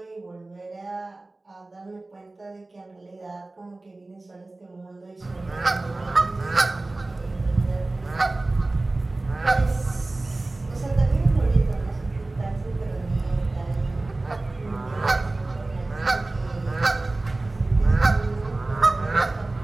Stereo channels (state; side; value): quieter; left; 3.0 dB